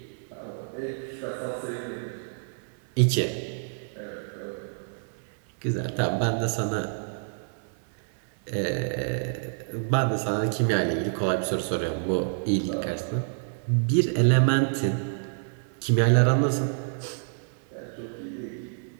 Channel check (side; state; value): left; silent; digital silence